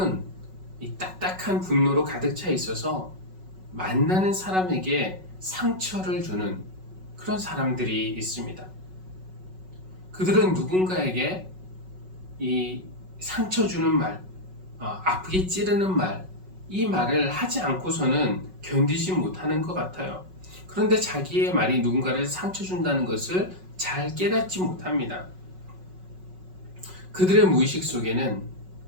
이 딱딱한 분노로 가득 차 있어서 만나는 사람에게 상처를 주는 그런 사람들이 있습니다. 그들은 누군가에게 이 상처 주는 말, 아프게 찌르는 말, 이 말을 하지 않고서는 견디지 못하는 것 같아요. 그런데 자기의 말이 누군가를 상처 준다는 것을 잘 깨닫지 못합니다. 그들의 무의식 속에는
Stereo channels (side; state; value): left; late; 5.4 ms